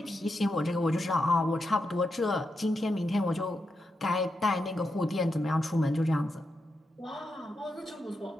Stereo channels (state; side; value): normal; both; correlation 0.85